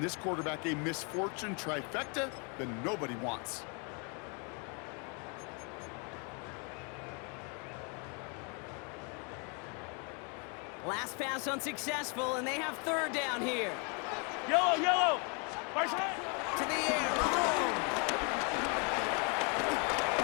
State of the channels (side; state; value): right; quieter; 35.3 dB